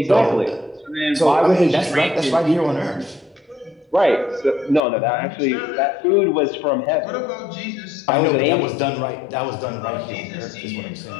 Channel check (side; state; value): right; drops out; at 4.8 s